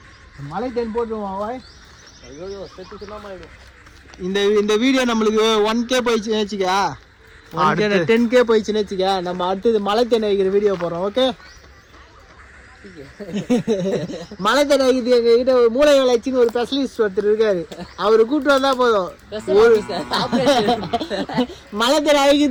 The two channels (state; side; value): identical; both; correlation 1.00